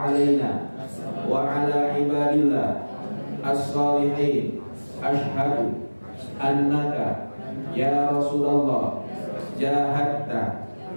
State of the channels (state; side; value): inverted; both; correlation -1.00